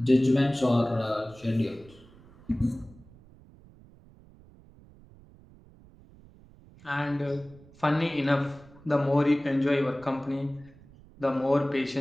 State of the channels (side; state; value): right; noise; rumble, 24 dB below the sound